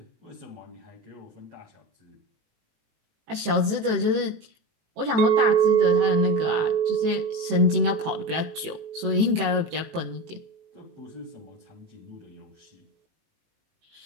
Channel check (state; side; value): late; left; 18 ms